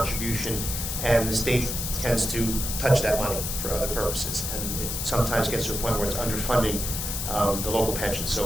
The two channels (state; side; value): noise; left; hiss, 3 dB below the sound